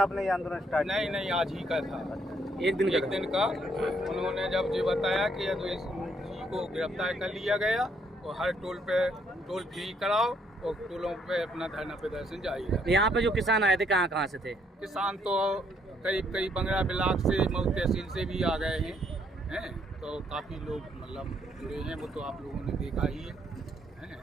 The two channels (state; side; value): normal; both; correlation 0.70